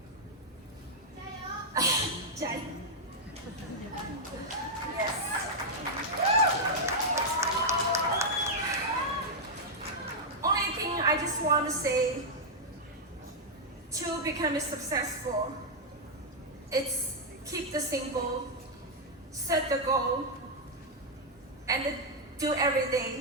Jai. Yes. Only thing I just want to say to become successful, it's keep the simple, set the goal, and do every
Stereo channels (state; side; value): normal; both; correlation -0.03